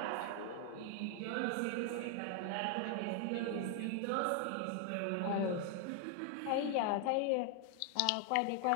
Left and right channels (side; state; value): both; different; correlation 0.00